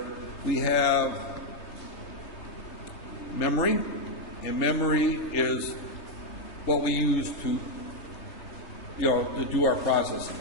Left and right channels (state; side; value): late; right; 3.3 ms